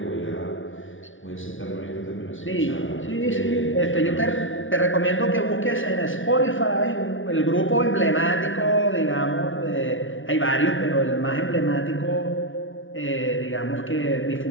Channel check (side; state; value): right; late; 0.57 ms